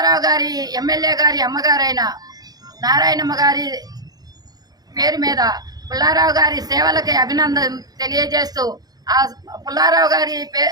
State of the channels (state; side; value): late; left; 0.19 ms